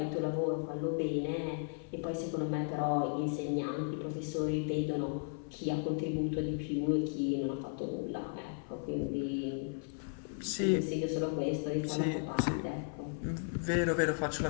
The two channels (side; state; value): right; silent; 54 dB below the other